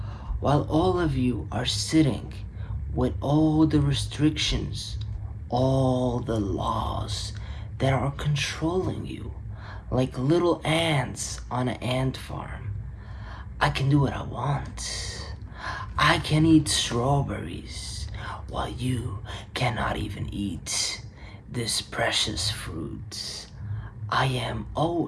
While all of you are sitting with all the restrictions, all the laws that are controlling you, like little ants on an ant farm, I can do what I want. I can eat strawberries while you cannot even eat this precious fruit. I am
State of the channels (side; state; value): both; identical; correlation 1.00